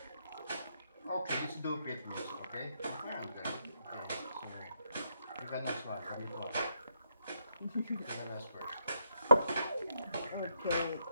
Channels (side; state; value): both; inverted; correlation -0.77